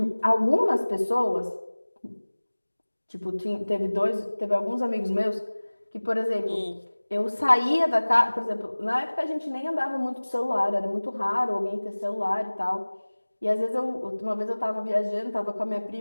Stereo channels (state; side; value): inverted; both; correlation -1.00